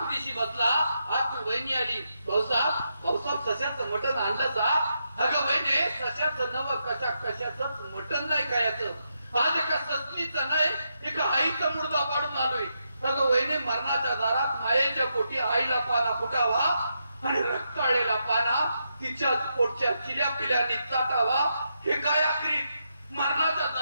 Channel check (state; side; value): inverted; both; correlation -0.82